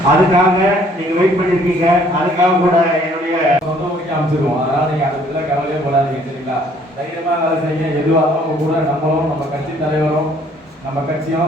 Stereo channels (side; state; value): both; normal; correlation 0.60